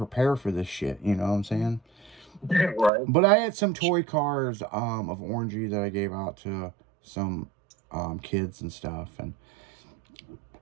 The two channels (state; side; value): drops out; left; at 2.9 s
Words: for this shit. You know what I'm saying? Right. But I had some toy cars of Orangey that I gave out to some kids and stuff. And